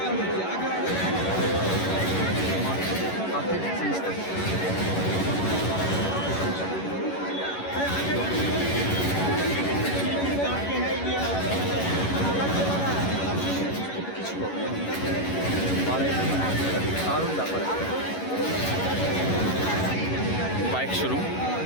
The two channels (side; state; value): right; late; 11 ms